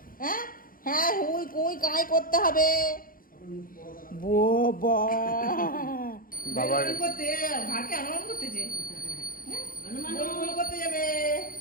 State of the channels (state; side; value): late; right; 0.41 ms